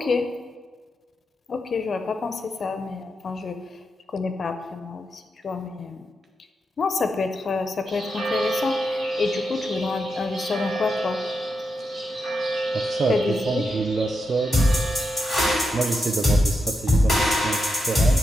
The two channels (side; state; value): both; normal; correlation 0.85